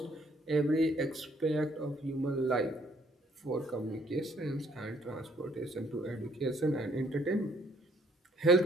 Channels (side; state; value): both; normal; correlation 0.65